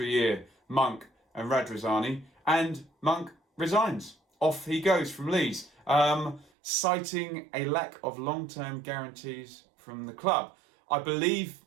year, Monk and Radrizzani, and Monk resigns. Off he goes from Leeds, citing a lack of long-term guarantees from the club. I believe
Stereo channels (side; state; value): left; drops out; at 6.5 s